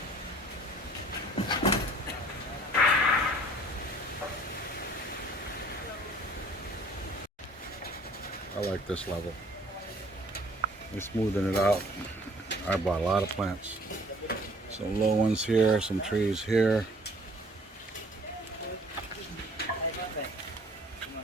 I like this level. They're smoothing it out. I bought a lot of plants. Some low ones here, some trees here.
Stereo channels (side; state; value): both; normal; correlation 0.54